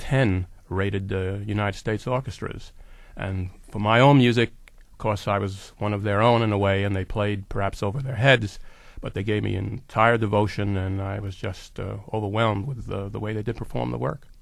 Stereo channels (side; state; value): both; identical; correlation 1.00